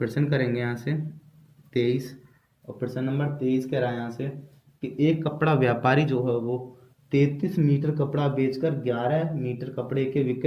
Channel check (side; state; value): both; identical; correlation 1.00